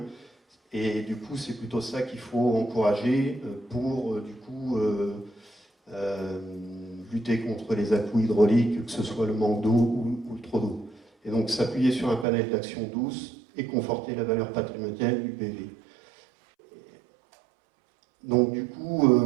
et du coup, c'est plutôt ça qu'il faut encourager pour, du coup, lutter contre les à-coups hydrauliques, que ce soit le manque d'eau ou le trop d'eau. Et donc, s'appuyer sur un panel d'action douce et conforter la valeur patrimoniale du PV. Donc du coup,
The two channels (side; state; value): left; drops out; at 12.2 s